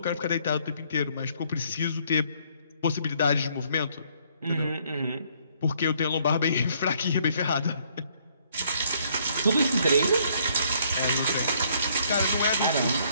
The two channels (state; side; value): inverted; both; correlation -0.66